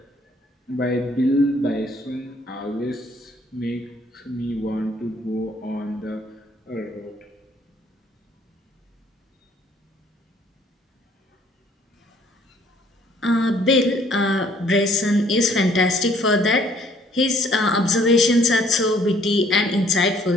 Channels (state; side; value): normal; both; correlation 0.61